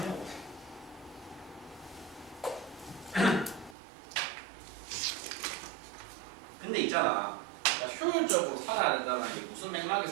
근데 있잖아. 효율적으로 살아야 된다는 게 무슨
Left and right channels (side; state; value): left; drops out; at 3.8 s